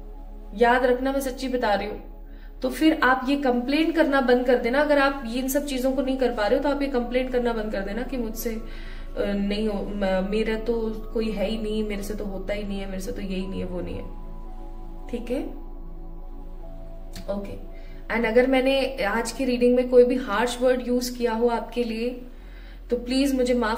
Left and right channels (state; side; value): identical; both; correlation 1.00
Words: याद रखना, मैं सच्ची बता रही हूं। तो फिर आप ये कंप्लेन करना बंद कर देना। अगर आप इन सब चीजों को नहीं कर पा रहे हो तो आप ये कंप्लेन करना बंद कर देना कि मुझसे नहीं हो, मेरा तो कोई है ही नहीं, मेरे से तो होता ही नहीं है, मेरे से तो यही नहीं है, वो नहीं है, ठीक है? ओके। एंड अगर मैंने आज की रीडिंग में कोई भी हार्श वर्ड यूज किया हो आपके लिए तो प्लीज मुझे